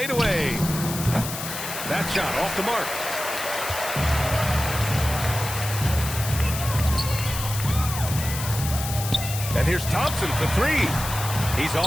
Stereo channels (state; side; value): noise; left; hiss, 7 dB below the sound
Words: That shot off the mark. And here's Thompson for 3. He's